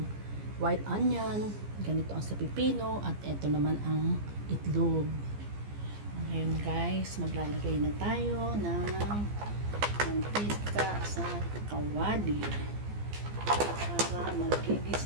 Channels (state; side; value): late; left; 15 ms